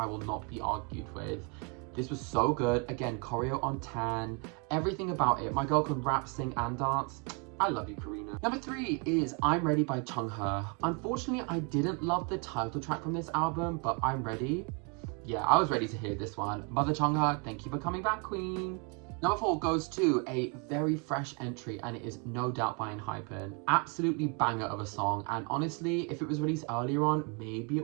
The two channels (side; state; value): left; quieter; 34.9 dB